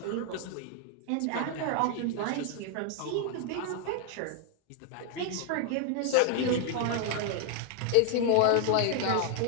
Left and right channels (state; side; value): different; both; correlation 0.00